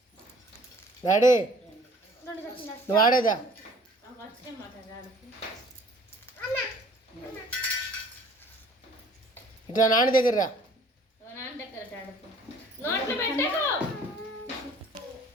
డాడీ నువ్వు ఆడేదా ఇట్లా నాన్న దగ్గర రా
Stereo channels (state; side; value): normal; both; correlation 0.53